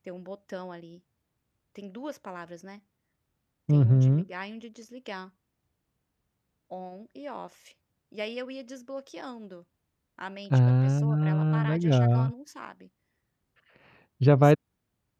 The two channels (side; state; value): both; identical; correlation 1.00